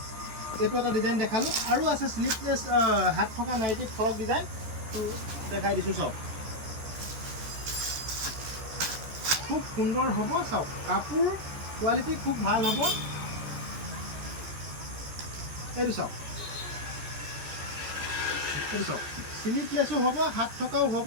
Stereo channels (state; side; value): late; left; 14 ms